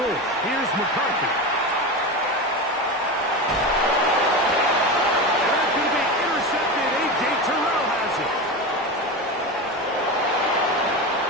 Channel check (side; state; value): both; normal; correlation 0.22